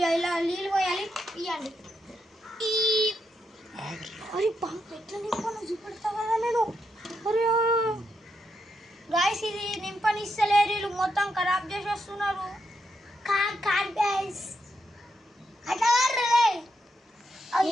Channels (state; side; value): normal; both; correlation 0.82